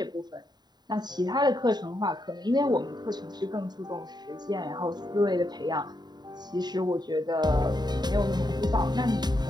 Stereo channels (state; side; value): late; left; 0.20 ms